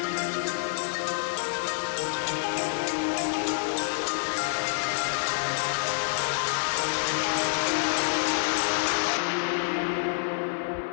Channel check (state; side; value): silent; right; digital silence